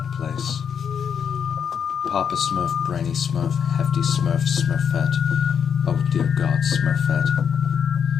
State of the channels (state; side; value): quieter; right; 7.4 dB